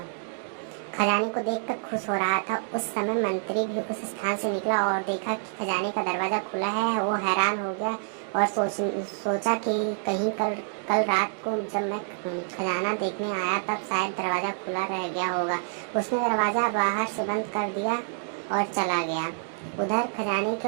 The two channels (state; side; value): silent; left; digital silence